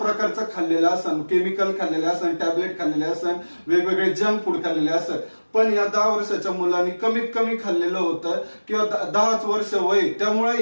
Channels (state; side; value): inverted; both; correlation -1.00